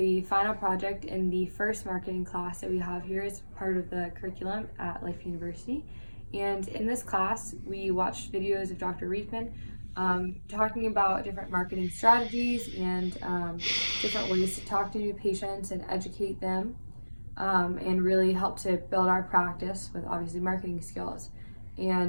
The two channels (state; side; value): inverted; both; correlation -1.00